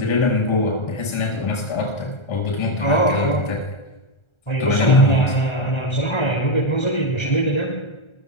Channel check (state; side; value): late; right; 1.3 ms